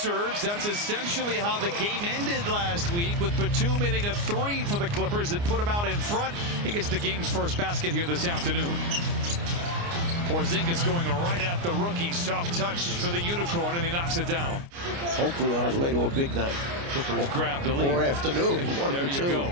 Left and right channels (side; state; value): left; late; 29 ms